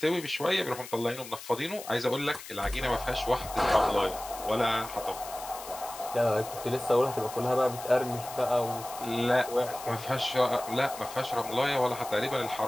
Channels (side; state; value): left; noise; hiss, 13 dB below the sound